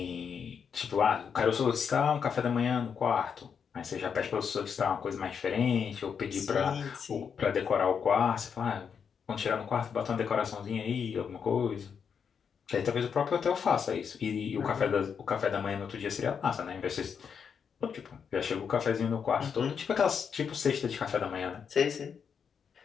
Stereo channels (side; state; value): right; quieter; 6.8 dB